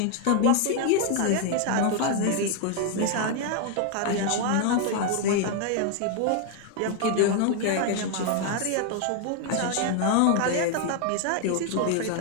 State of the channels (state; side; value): different; both; correlation 0.00